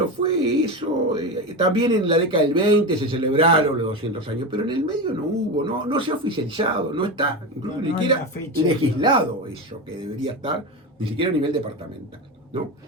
fue eso. También en la década del 20 se celebraron los 200 años, pero en el medio no hubo, no se ha oficializado, no está, incluso ni siquiera legislado eso, que debería estar, ni siquiera a nivel departamental, ¿no?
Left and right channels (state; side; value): normal; both; correlation 0.20